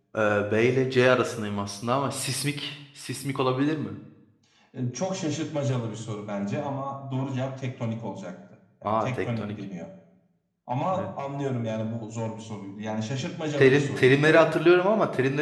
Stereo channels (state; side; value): identical; both; correlation 1.00